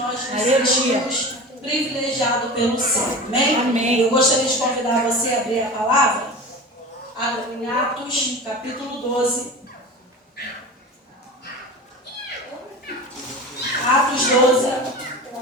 nos sentimos privilegiados pelo céu. Amém? Amém? Eu gostaria de convidar você a abrir a palavra em Atos, capítulo 12. Atos 12.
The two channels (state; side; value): normal; both; correlation 0.32